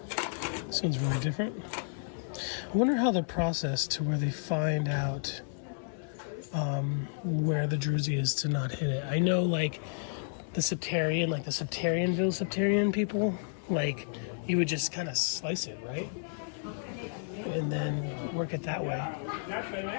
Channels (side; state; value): right; silent; 57 dB below the other